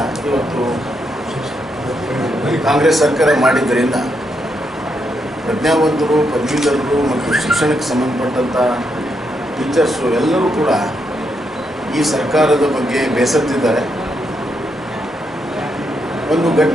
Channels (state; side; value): normal; both; correlation 0.80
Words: ಇವತ್ತು ಕಾಂಗ್ರೆಸ್ ಸರ್ಕಾರ ಮಾಡಿದ್ದರಿಂದ ಪ್ರಜ್ಞಾವಂತರು, ಪದವೀಧರರು ಮತ್ತು ಶಿಕ್ಷಣಕ್ಕೆ ಸಂಬಂಧಪಟ್ಟಂಥ ಟೀಚರ್ಸು ಎಲ್ಲರೂ ಕೂಡ ಈ ಸರ್ಕಾರದ ಬಗ್ಗೆ ಬೇಸತ್ತಿದ್ದಾರೆ. ಒಂದು